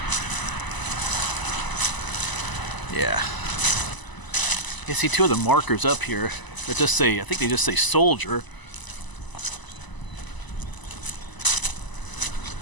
Yeah. You see two of the markers up here that just say, I think they just say soldier.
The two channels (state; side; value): late; right; 1.0 ms